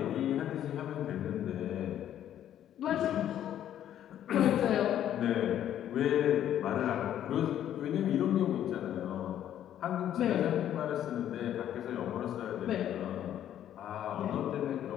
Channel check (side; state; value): right; quieter; 10.9 dB